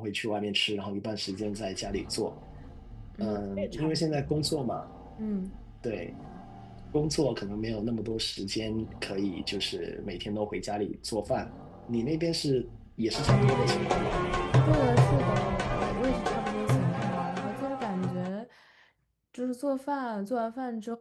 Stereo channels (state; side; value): identical; both; correlation 1.00